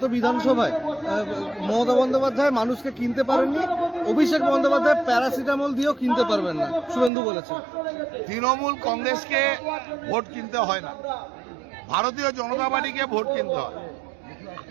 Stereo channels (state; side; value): drops out; left; at 7.1 s